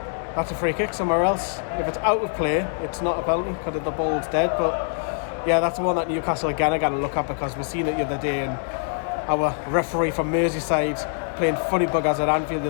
that's a free kick somewhere else. If it's out of play, it's not a penalty because the ball's dead. But yeah, that's the one that Newcastle again are going to look at, because we've seen it the other day, and our referee from Merseyside playing funny buggers at Anfield the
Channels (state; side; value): silent; right; 63 dB below the other